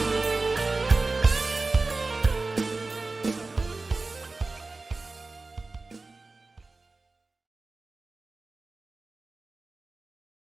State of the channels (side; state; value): left; quieter; 3.5 dB